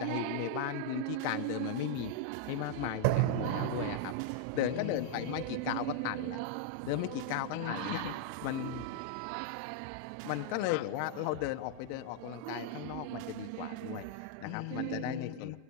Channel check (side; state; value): both; different; correlation -0.01